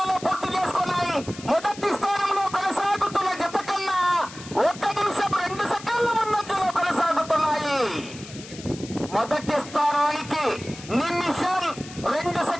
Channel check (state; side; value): noise; left; hiss, 16 dB below the sound